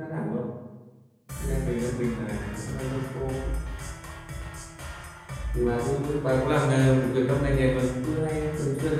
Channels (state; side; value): identical; both; correlation 1.00